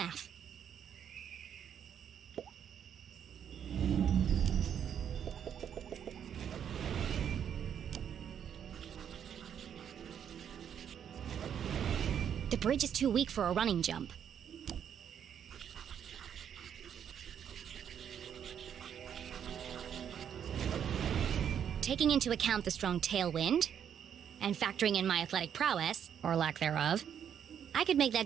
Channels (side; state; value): left; quieter; 8.7 dB